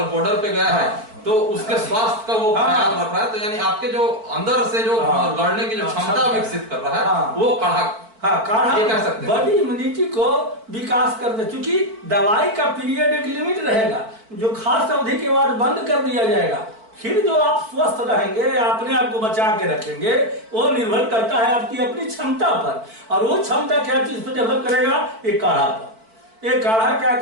बॉर्डर पे गया है तो उसके स्वास्थ्य का वो ख्याल रख रहा है, तो यानी आपके जो अंदर से जो लड़ने की जो क्षमता विकसित कर रहा है वो काढ़ा, काढ़ा ये कह सकते हैं बॉडी इम्यूनिटी को विकास कर दे। क्योंकि दवाई का पीरियड एक लिमिट रहेगा, जो खास अवधि के बाद बंद कर दिया जाएगा। फिर जो आप स्वस्थ रहेंगे, अपने आप को बचा के रखेंगे, वो निर्भर करता है आपकी अपनी क्षमता पर। और वो क्षमता क्या चीज पर डेवलप करेगा? एक काढ़ा पर। ये काढ़ा क्या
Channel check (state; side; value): late; left; 4.5 ms